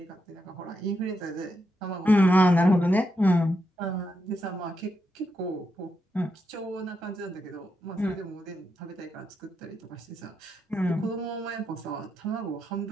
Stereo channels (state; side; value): normal; both; correlation 0.83